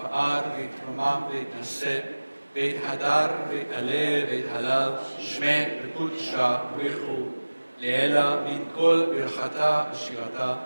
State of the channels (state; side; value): inverted; both; correlation -1.00